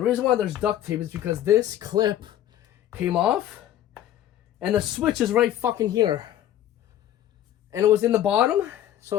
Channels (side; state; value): right; quieter; 11.8 dB